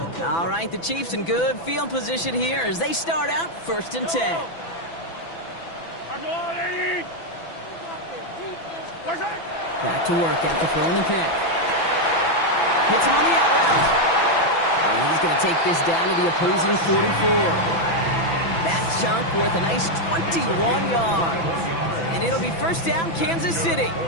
All right, the Chiefs in good field position here as they start out 1st and 10. Back to work after throwing the pick. Hits him on the out route. And he's going to take this down to the opposing 44. That chunk worth a nice 21 yards. And it'll be 1st down, Kansas City.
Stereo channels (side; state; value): right; late; 6.0 ms